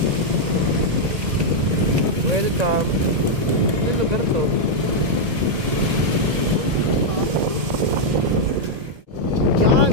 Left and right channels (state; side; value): late; left; 1.7 ms